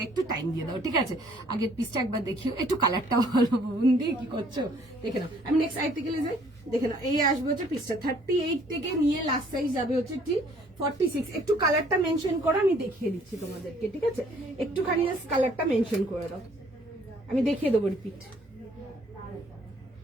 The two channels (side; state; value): both; normal; correlation 0.60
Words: একটু টাইম দিয়ে দাও, ঠিক আছে? আগের পিসটা একবার দেখিও, একটু কালারটা ভালো, বুন্দি কি করছো দেখে নাও। আমি নেক্সট আর্টিকেলে যাই, দেখে নাও। এই আসবে হচ্ছে পিসটা 38 থেকে নিয়ে লাস্ট সাইজ যাবে হচ্ছে 46। একটু কালারটা মেনশন করো, আমি দেখিয়ে দিচ্ছি তোমাদেরকে, ঠিক আছে? একটুখানি কালারটা মেনশন করে দাও, আমি দেখিয়ে দেবো রিপিট।